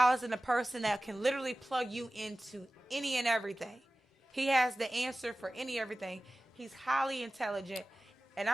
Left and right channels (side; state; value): both; normal; correlation 0.96